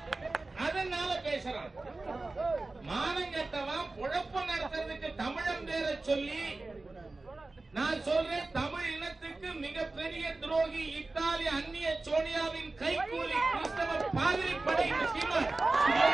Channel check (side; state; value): left; quieter; 3.3 dB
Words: அதனால பேசுறான். மானங்கட்டவன் பொழப்பு நடத்துறதுக்கு தமிழன் பேரை சொல்லி நான் சொல்றேன். தமிழ் இனத்துக்கு மிகப்பெரிய துரோகி இத்தாலி அந்நிய சோனியாவின் கைகூலி கிறிஸ்தவ பாதிரி படை சீமான்.